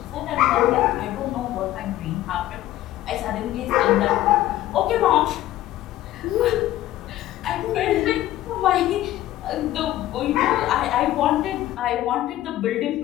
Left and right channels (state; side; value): quieter; right; 14.4 dB